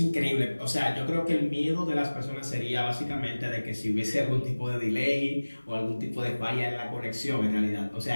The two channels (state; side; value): inverted; both; correlation -1.00